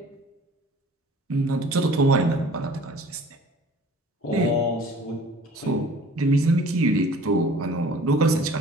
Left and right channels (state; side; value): normal; both; correlation 0.49